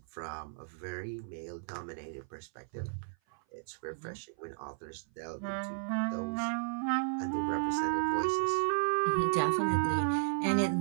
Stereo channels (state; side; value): silent; left; 55 dB below the other